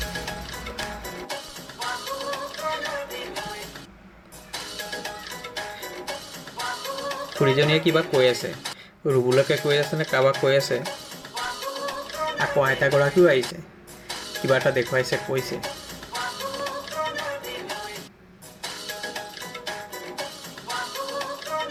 খুৰীজনীয়ে কিবা কৈ আছে, ৰুবুলকে কৈ আছে নে কাৰোবাক কৈ আছে। আকৌ আইতাগৰাকীও আহিছে, কিবা এটা দেখুৱাইছে, কৈছে।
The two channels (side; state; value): both; identical; correlation 1.00